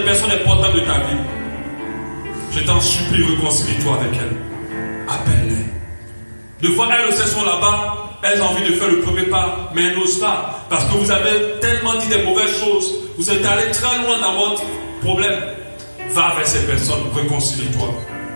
personnes importantes de ta vie, je t'en supplie, réconcilie-toi avec elles. Appelle-les. Des fois, elles aussi sont là-bas, elles ont envie de faire le premier pas, mais elles n'osent pas. Parce que vous avez tellement dit des mauvaises choses. Vous êtes allé très loin dans votre problème. Va vers ces personnes, réconcilie-toi.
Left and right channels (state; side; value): inverted; both; correlation -1.00